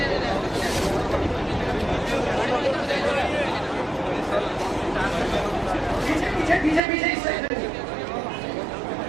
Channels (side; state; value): left; drops out; at 6.8 s